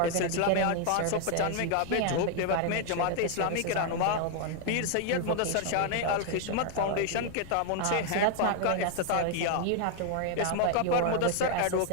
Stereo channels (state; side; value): different; both; correlation 0.00